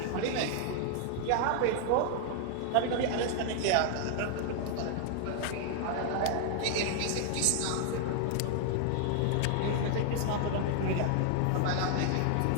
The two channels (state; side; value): different; both; correlation 0.00